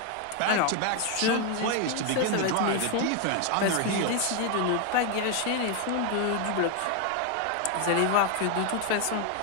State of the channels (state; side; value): different; both; correlation 0.01